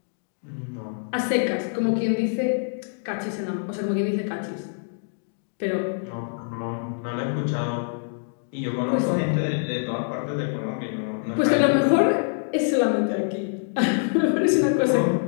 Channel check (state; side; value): silent; right; digital silence